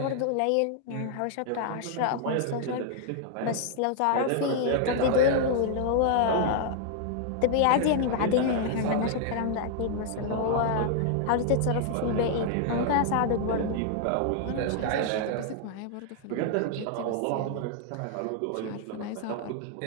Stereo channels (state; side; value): different; both; correlation -0.01